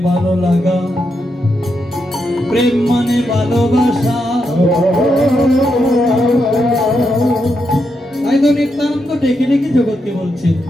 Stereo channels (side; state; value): both; normal; correlation 0.83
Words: ভালো লাগা, প্রেম মানে ভালোবাসা। তাই তো নিত্যানন্দ ডেকে ডেকে জগৎকে বলছে,